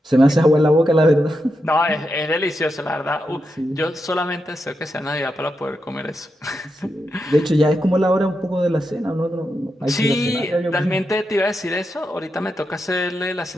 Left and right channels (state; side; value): normal; both; correlation 0.86